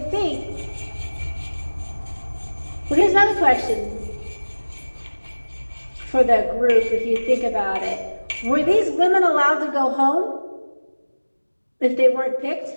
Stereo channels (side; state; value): both; inverted; correlation -1.00